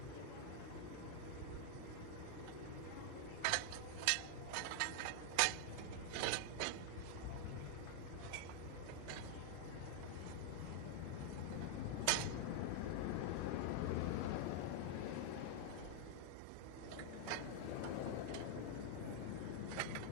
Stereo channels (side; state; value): both; different; correlation 0.00